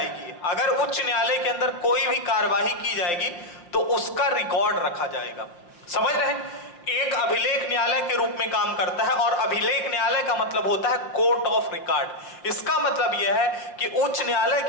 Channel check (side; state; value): right; late; 5.8 ms